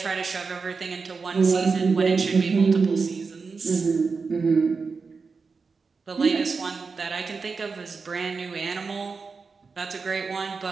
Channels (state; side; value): quieter; left; 4.8 dB